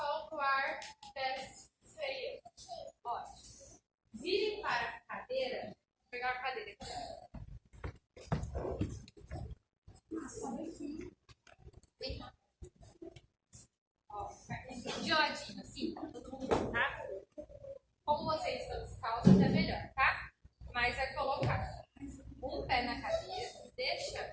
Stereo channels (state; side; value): identical; both; correlation 1.00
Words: solta o ar, desce, freia. Ótimo. Vire para a cadeira. Vou pegar a cadeira aqui. Vem cá. Ó, de ladinho, assim, todo mundo, tá? Como vocês estão descalços, é melhor, tá? Mas é colocar um pé na cadeira,